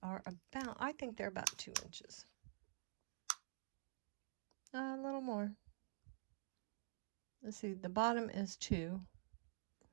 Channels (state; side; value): silent; left; digital silence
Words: are about, I think they're about 2 inches. A little more. Let's see, the bottom is 2.